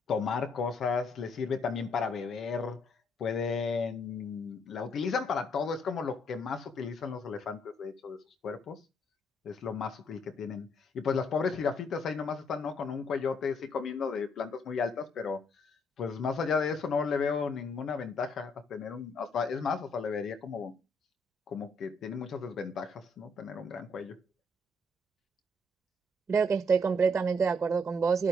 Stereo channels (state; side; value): normal; both; correlation 0.71